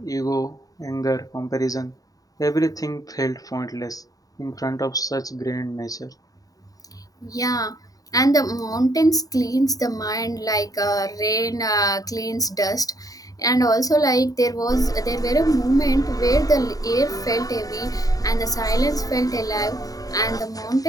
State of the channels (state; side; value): late; right; 0.18 ms